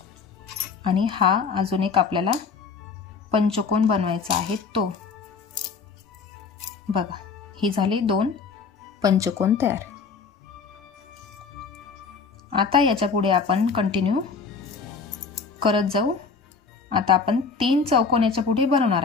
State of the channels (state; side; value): quieter; right; 5.2 dB